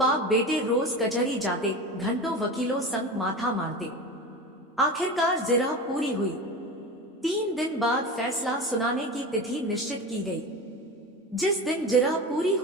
बेटे रोज कचहरी जाते, घंटों वकीलों संग माथा मारते। आखिरकार जिरह पूरी हुई। 3 दिन बाद फैसला सुनाने की तिथि निश्चित की गई। जिस दिन जिरह पूरी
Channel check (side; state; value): both; normal; correlation 0.28